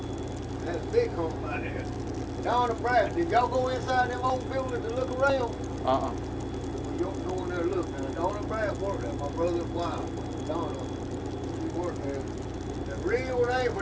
That's a big hump right there. Donna Pratt, did y'all go inside them old buildings and look around? Uh-uh. Well, y'all go in there and look. Now, Donna Pratt worked there, my brother's wife, Donna. She worked there. The real name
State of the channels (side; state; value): both; identical; correlation 1.00